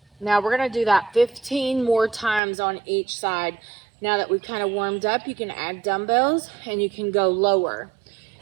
Now we're gonna do that 15 more times on each side. Now that we've kind of warmed up, you can add dumbbells and you can go lower.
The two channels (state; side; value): drops out; left; at 2.4 s